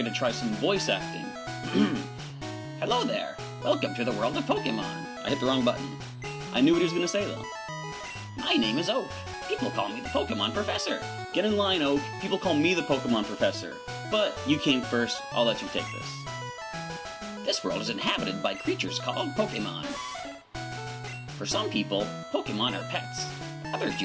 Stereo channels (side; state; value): both; identical; correlation 1.00